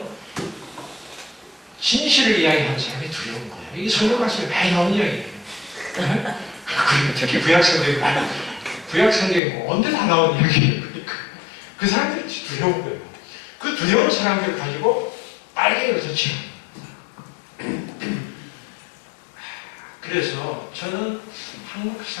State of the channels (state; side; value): drops out; right; at 9.4 s